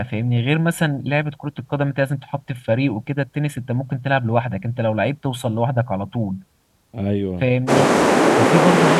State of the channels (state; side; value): identical; both; correlation 1.00